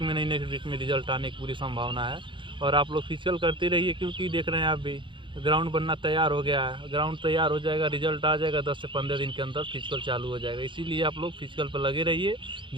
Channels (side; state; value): left; late; 0.24 ms